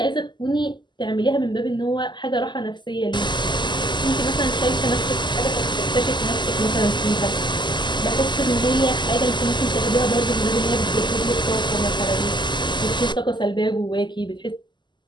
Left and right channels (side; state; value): right; late; 0.22 ms